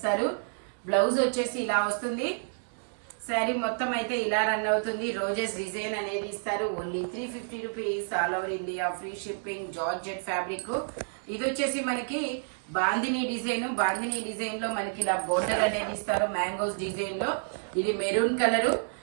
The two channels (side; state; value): left; silent; digital silence